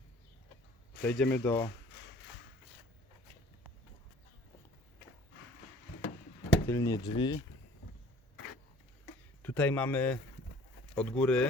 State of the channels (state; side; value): normal; both; correlation 0.51